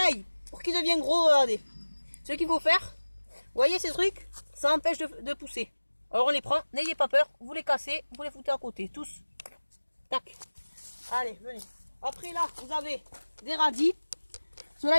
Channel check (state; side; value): inverted; both; correlation -1.00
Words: pour qu'il devienne gros, regardez. Ce qu'il faut faire, vous voyez ces trucs, ça empêche de pousser. Alors on les prend, n'ayez pas peur, vous les cassez, vous les foutez à côté, tous. Tac. Allez, venez. Après là, vous avez des radis. Ceux-là,